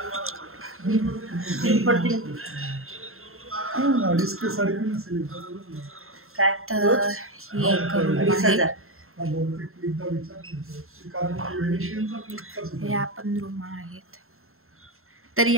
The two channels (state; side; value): late; left; 0.62 ms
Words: काय तर हे आपण रूम आहेत. तर